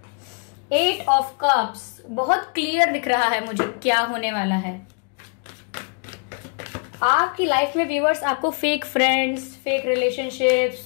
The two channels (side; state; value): right; quieter; 38.0 dB